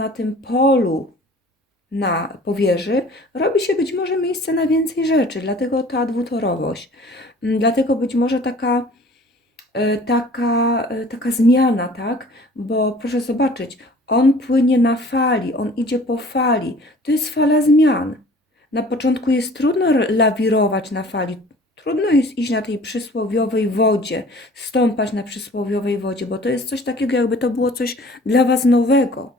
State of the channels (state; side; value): normal; both; correlation 0.49